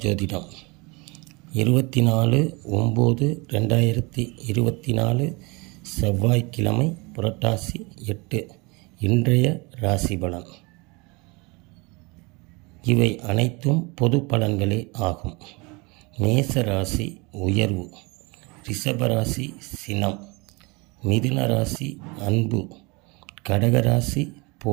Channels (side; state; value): left; quieter; 27.0 dB